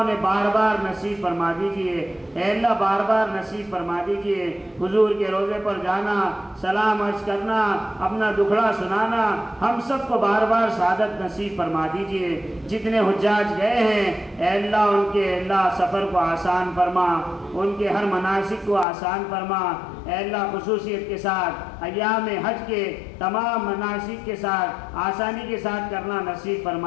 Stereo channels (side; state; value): right; drops out; at 18.9 s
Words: بار بار نصیب فرما دیجئے۔ اے اللہ بار بار نصیب فرما دیجئے۔ حضور کے روضے پر جانا، سلام عرض کرنا، اپنا دکھڑا سنانا، ہم سب کو بار بار سعادت نصیب فرما دیجئے۔ جتنے حجاج گئے ہیں اے اللہ ان کے اللہ سفر کو آسان فرما، ان کے ہر مناسک کو آسان فرما۔ اے اللہ خصوصیت کے ساتھ ایام حج کے تمام مناسک کے ساتھ آسانی کے ساتھ کرنا نصیب